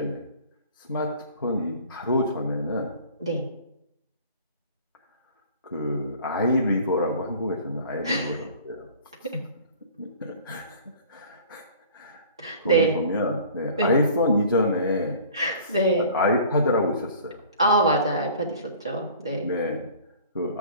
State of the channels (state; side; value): inverted; both; correlation -0.47